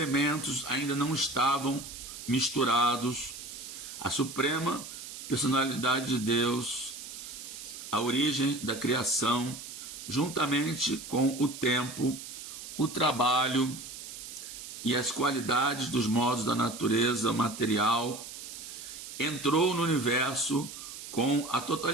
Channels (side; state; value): right; noise; hiss, 11 dB below the sound